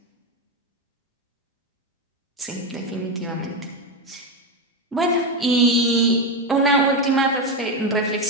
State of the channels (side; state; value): both; normal; correlation 0.11